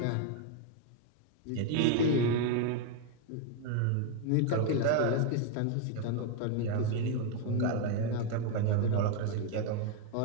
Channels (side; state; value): both; different; correlation 0.01